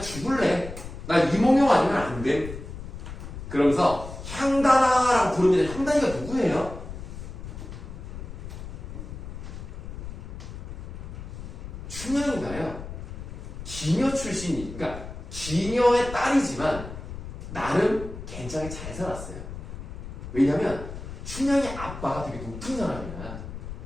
죽을래. 나 이몽룡 아니면 안 돼. 그러면서 향단아라고 부릅니다. 향단이가 누구예요? 춘향이가요. 기녀 출신이, 그러니까 기녀의 딸이지만 나름 굉장히 잘 살았어요. 왜냐면 춘향이 아빠가 되게 높은 사람이야.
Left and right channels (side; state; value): left; noise; rumble, 10 dB below the sound